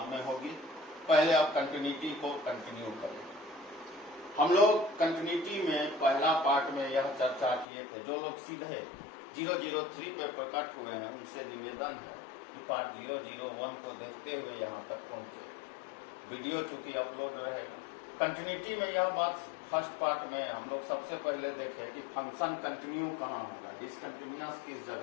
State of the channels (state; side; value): drops out; right; at 7.7 s